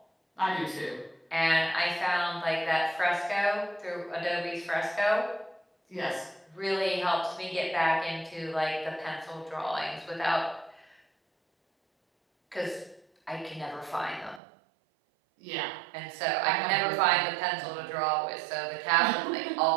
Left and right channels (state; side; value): drops out; left; at 14.4 s